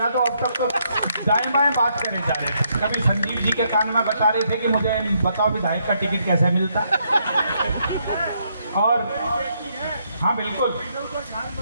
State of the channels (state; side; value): inverted; both; correlation -0.75